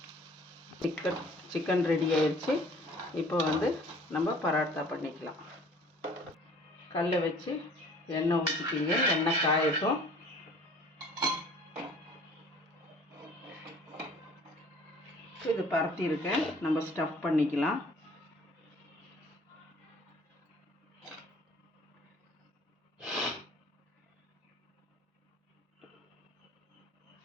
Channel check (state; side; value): normal; both; correlation 0.51